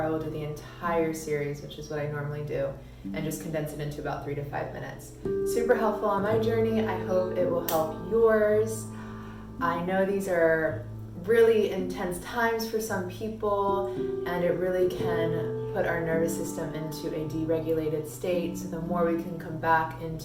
I will do the entire series, which is what I normally do, and just condense it into about 3 to 5 minutes. Super helpful on my journey. I hope it will help yours. I know these are really intense times for some people, and it really can put our nervous system into a deregulated state. So the more we can come back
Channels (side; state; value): both; identical; correlation 1.00